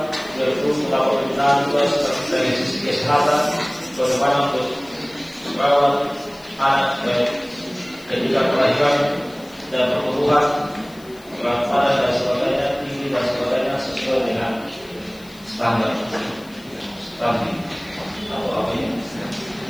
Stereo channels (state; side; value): noise; left; hiss, 25 dB below the sound